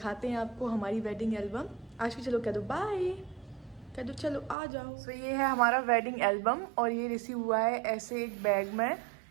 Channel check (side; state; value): left; drops out; at 4.5 s